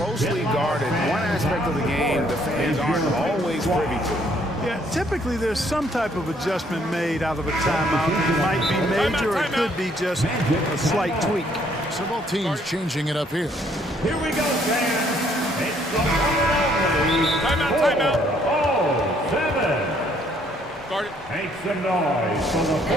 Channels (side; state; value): both; normal; correlation 0.66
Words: guarded. One aspect of the game the fans aren't always privy to. Yeah, typically there's some type of adjustment made out of a timeout. It might be major or it could be just a slight tweak. So both teams changing it up here. Here we go, fans. It's the timeout. 407. Guard it. Make some noise for the